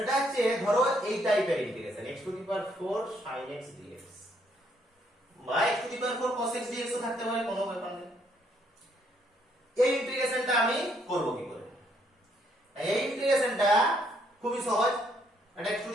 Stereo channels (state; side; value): normal; both; correlation 0.70